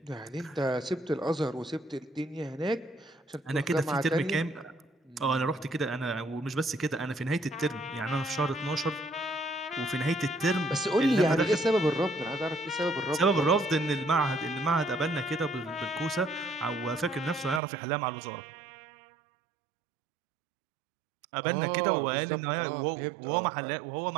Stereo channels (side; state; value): left; drops out; at 17.6 s